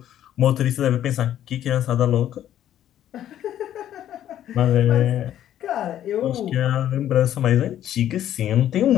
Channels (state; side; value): quieter; right; 11.5 dB